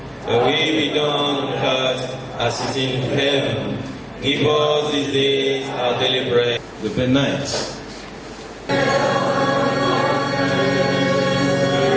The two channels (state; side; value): identical; both; correlation 1.00